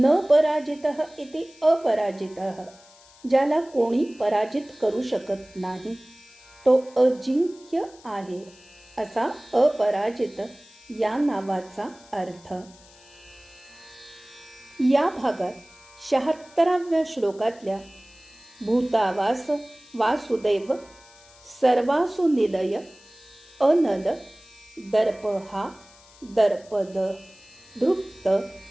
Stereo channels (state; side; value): noise; left; hiss, 25 dB below the sound